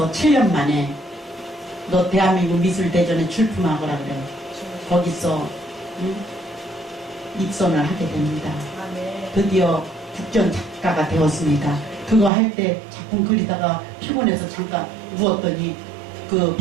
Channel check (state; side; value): drops out; left; at 12.3 s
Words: 7년 만에 너 대한민국 미술대전에 출품하거라 그래요. 거기서 입선을 하게 됩니다. 드디어 국전 작가가 되었습니다. 그거 할 때 작품 그리다가 피곤해서 잠깐 누웠더니 그